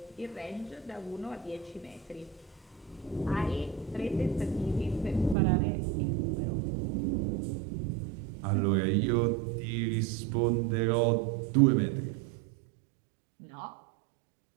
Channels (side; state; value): left; drops out; at 5.4 s